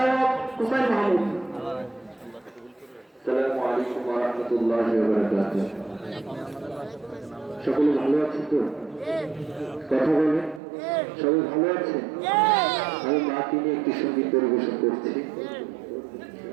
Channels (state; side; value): drops out; left; at 10.6 s